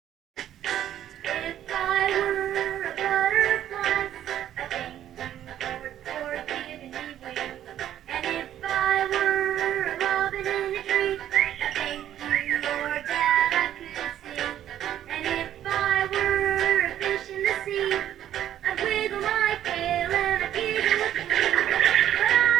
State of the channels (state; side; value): quieter; left; 11.3 dB